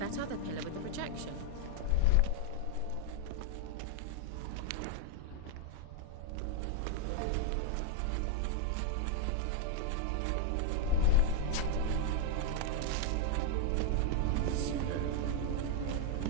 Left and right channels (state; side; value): different; both; correlation 0.00